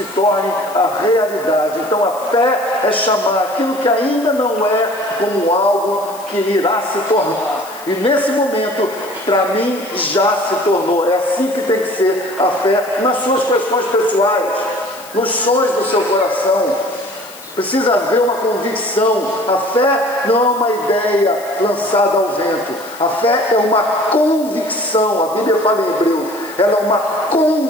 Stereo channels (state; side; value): noise; left; hiss, 19 dB below the sound